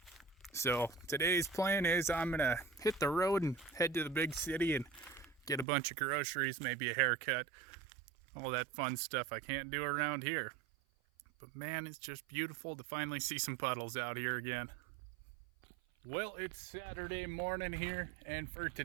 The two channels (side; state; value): left; drops out; at 5.7 s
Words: So today's plan is I'm gonna hit the road and head to the big city and get a bunch of groceries, maybe a haircut, all that fun stuff I can't do around here. But man, it's just beautiful to finally see some puddles out here again. Well, it's Saturday morning here, and for